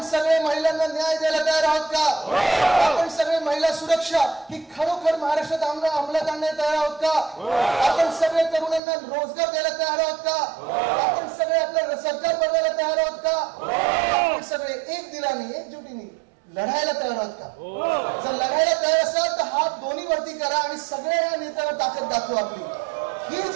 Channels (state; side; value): drops out; left; at 8.8 s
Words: सगळे महिलांना न्याय द्यायला तयार आहोत का? आपण सगळे महिला सुरक्षा ही खरोखर महाराष्ट्रात अंमलात आणण्यात तयार आहोत का? आपण सगळे तरुणांना रोजगार द्यायला तयार आहोत का? आपण सगळे आपलं सरकार बनवायला तयार आहोत का? आपण सगळे एक दिलाने एकजुटीने लढायला तयार आहोत का? जर लढायला तयार असाल तर हात दोन्ही वरती करा आणि सगळ्या नेत्यांना ताकद दाखवा आपली. ही